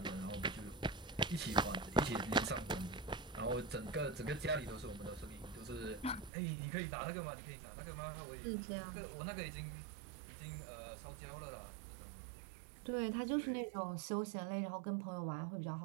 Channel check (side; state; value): left; drops out; at 6.3 s